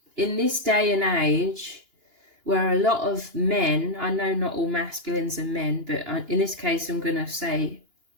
in this day and age, where a lot of men, I know not all masculines are men, but in this case I'm going to say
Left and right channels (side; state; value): left; late; 2.9 ms